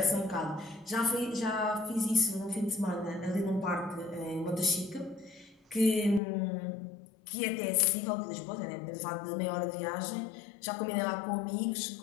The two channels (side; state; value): right; drops out; at 6.2 s